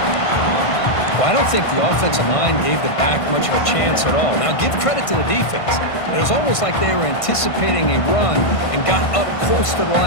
Well, I don't think the offensive line gave the back much of a chance at all. Now, give credit to the defense. It was almost like they were anticipating a run and got up close to the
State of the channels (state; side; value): late; right; 1.5 ms